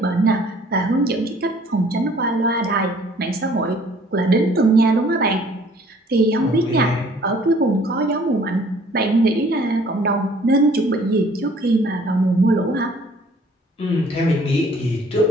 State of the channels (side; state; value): both; normal; correlation 0.56